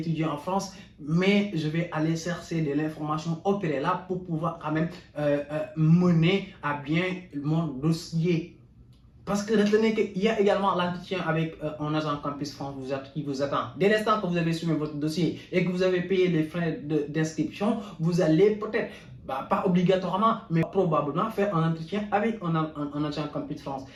en France mais je vais aller chercher de l'information au préalable pour pouvoir quand même mener à bien mon dossier. Parce que retenez qu'il y a également l'entretien avec un agent Campus France qui vous attend. Dès l'instant que vous avez soumis votre dossier et que vous avez payé les frais d'inscription, vous allez peut-être pas obligatoirement, mais probablement faire un entretien avec un agent Campus France.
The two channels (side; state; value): both; identical; correlation 1.00